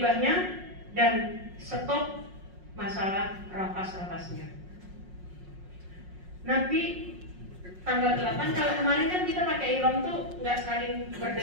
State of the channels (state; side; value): late; left; 5.5 ms